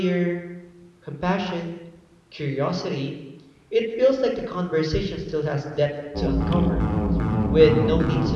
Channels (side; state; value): both; identical; correlation 1.00